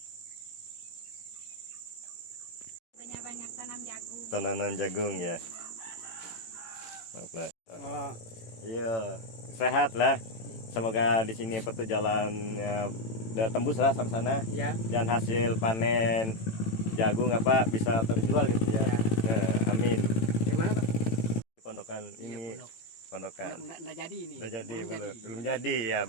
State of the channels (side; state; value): right; late; 18 ms